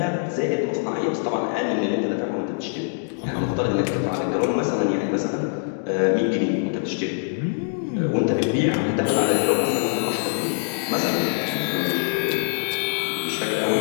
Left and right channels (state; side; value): silent; right; digital silence